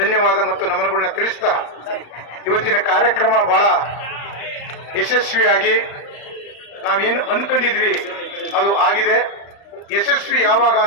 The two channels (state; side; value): late; right; 35 ms